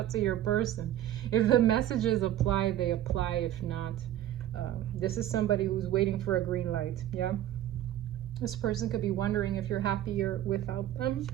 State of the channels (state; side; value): quieter; left; 12.4 dB